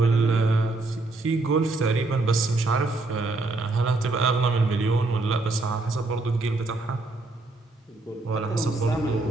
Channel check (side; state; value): left; quieter; 3.2 dB